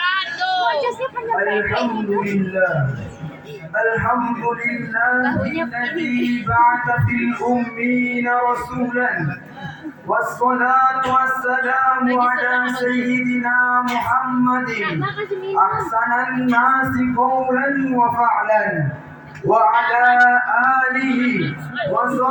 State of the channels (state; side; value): identical; both; correlation 1.00